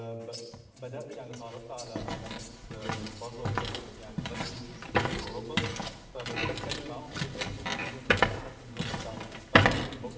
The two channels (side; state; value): both; identical; correlation 1.00